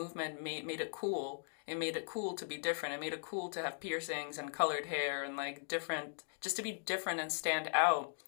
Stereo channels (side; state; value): right; silent; digital silence